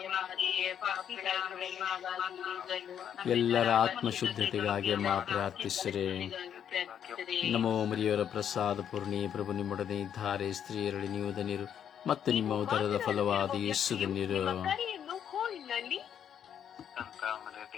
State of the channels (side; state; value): right; quieter; 9.0 dB